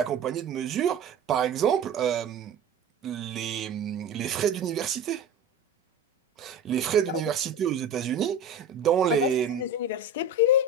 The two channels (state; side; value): quieter; left; 3.6 dB